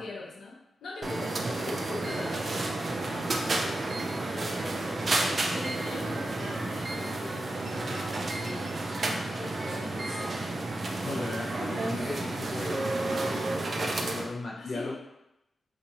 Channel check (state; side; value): normal; both; correlation 0.90